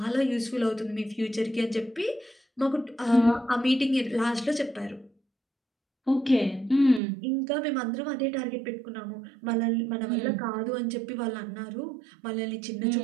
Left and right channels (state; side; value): drops out; left; at 7.0 s